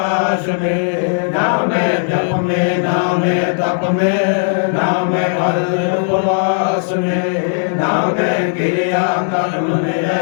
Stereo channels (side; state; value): right; silent; digital silence